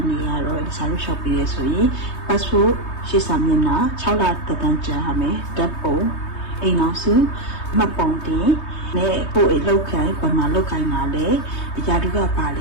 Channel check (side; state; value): right; late; 3.2 ms